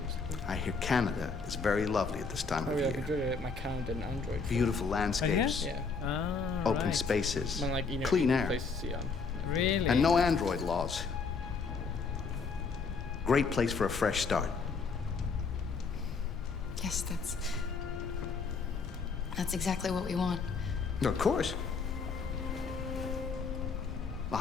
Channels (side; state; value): right; quieter; 4.8 dB